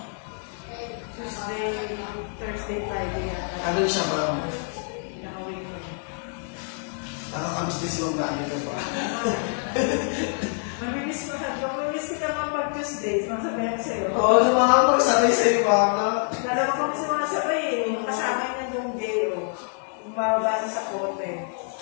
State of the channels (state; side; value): silent; right; 55 dB below the other